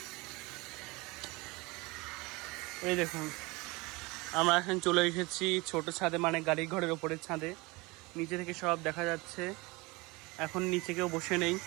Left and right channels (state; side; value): quieter; left; 24.5 dB